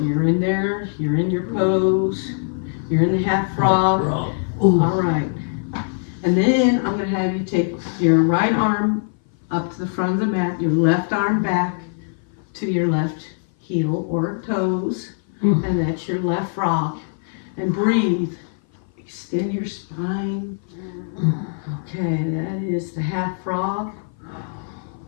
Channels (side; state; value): right; silent; 58 dB below the other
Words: you're in there. You're in your pose. You're in the half frog. All right. And then I'm going to have you take your right arm up to the front of the mat, your left arm back to your left heel or toes, and that's your left frog. And breathe. Extend your spine. Okay, that is the half frog.